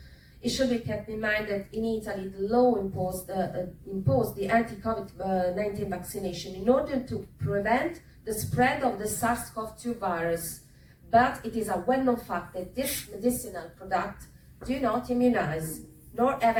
It should be kept in mind that in Italy, the law imposed the anti-COVID-19 vaccination in order to prevent the spread of the SARS-CoV-2 virus. But it is a well-known fact that this medicinal product do not immunize, nor have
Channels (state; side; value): identical; both; correlation 1.00